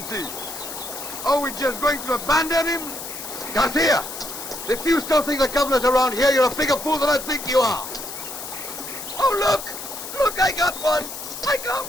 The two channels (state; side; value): noise; left; hiss, 9 dB below the sound